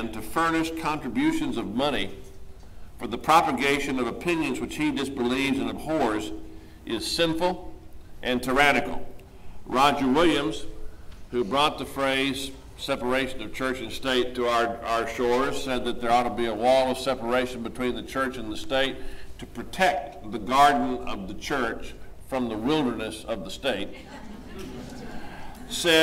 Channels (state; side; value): identical; both; correlation 1.00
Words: to furnish contributions of money for the propagation of opinions which he disbelieves and abhors is sinful and tyrannical. Roger Williams, who brought the phrase separation of church and state to our shores, said that there ought to be a wall of separation between the church and the state to protect the garden of the church from the wilderness of the state.